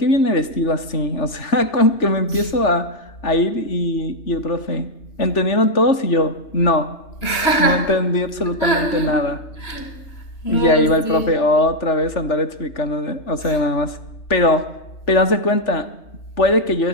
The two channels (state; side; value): late; right; 3.4 ms